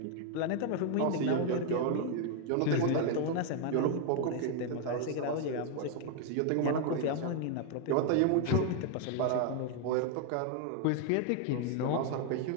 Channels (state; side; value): different; both; correlation 0.01